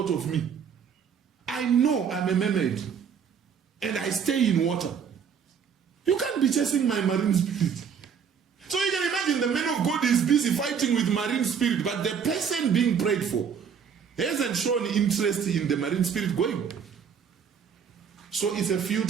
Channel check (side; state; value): left; quieter; 7.0 dB